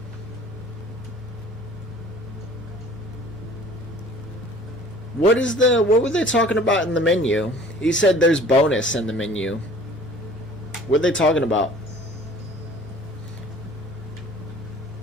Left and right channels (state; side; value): noise; left; hum, 28 dB below the sound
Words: What were they talking about in the menu? He said there's bonus in the menu. What are they talking about?